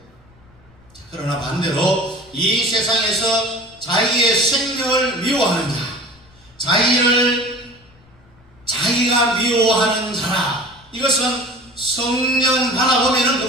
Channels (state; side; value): noise; left; rumble, 29 dB below the sound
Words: 그러나 반대로 이 세상에서 자기의 생명을 미워하는 자, 자기가 미워하는 자라, 이것은 성령 받아보면